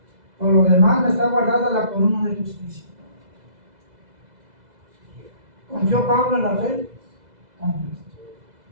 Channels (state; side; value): late; left; 2.0 ms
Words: Por lo demás me está guardada la corona de justicia. ¿Confió Pablo en la fe? Confió.